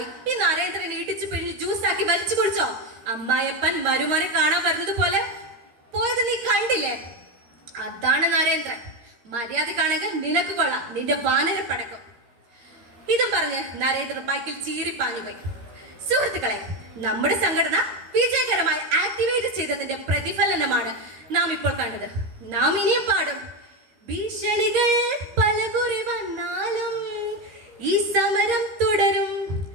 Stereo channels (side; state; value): left; late; 13 ms